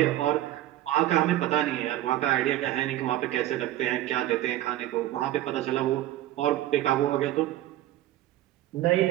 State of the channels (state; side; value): quieter; left; 14.2 dB